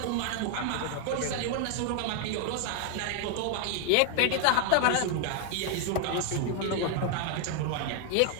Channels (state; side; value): different; both; correlation 0.00